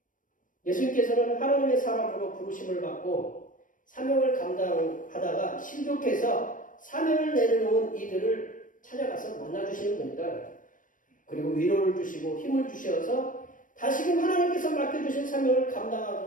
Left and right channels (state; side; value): late; right; 0.38 ms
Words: 예수님께서는 하나님의 사람으로 부르심을 받고 사명을 감당하다가 실족해서 사명을 내려놓은 이들을 찾아가서 만나주시는 분이다. 그리고 위로를 주시고 힘을 주셔서 다시금 하나님께서 맡겨주신 사명을